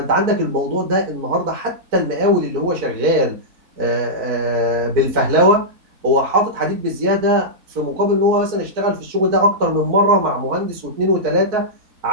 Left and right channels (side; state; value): left; late; 4.5 ms